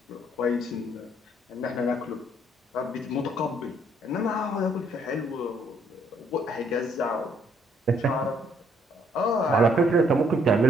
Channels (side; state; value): both; normal; correlation 0.67